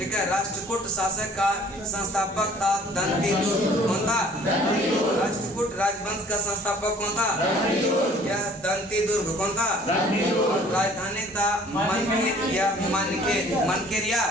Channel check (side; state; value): both; normal; correlation 0.53